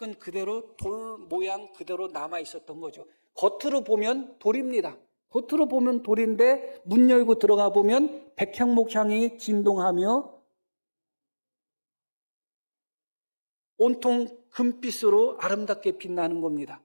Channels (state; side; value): inverted; both; correlation -1.00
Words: 그대로 돌 모양 그대로 남아 있었던 거죠. 겉으로 보면 돌입니다. 겉으로 보면 돌인데 문 열고 들어가 보면 백향목 향이 진동하며 온통 금빛으로 아름답게 빛나는 겁니다.